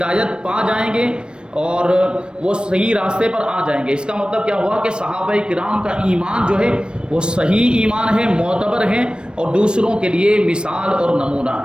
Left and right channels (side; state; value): left; late; 0.054 ms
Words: پا جائیں گے اور وہ صحیح راستے پر آ جائیں گے۔ اس کا مطلب کیا ہوا کہ صحابہ کرام کا ایمان جو ہے وہ صحیح ایمان ہے، معتبر ہے، اور دوسروں کے لیے مثال اور نمونہ